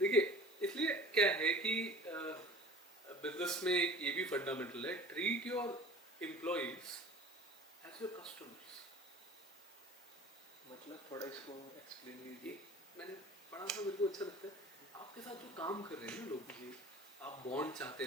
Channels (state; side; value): normal; both; correlation 0.44